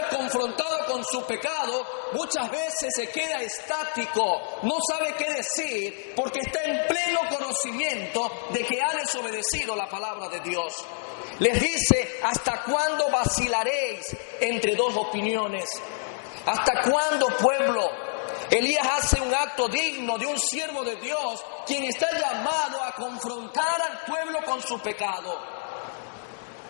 es confrontado con su pecado, muchas veces se queda estático, no sabe qué decir, porque está en pleno conocimiento de que ha desobedecido la palabra de Dios. Les dice: ¿hasta cuándo vacilaréis entre dos opiniones? ¿Hasta cuándo, pueblo? Elías hace un acto digno de un siervo de Dios, quien está llamado a confrontar al pueblo con su pecado.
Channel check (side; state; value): right; silent; digital silence